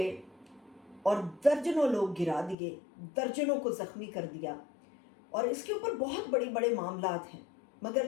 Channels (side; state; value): right; drops out; at 2.6 s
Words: اور درجنوں لوگ گرا دیے، درجنوں کو زخمی کر دیا. اور اس کے اوپر بہت بڑے معاملات ہیں،